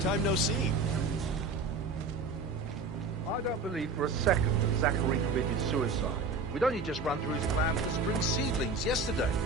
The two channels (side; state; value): left; quieter; 3.9 dB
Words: no see. I don't believe for a second that Zachary committed suicide. We'd only just run through his plan for the spring seedlings yesterday.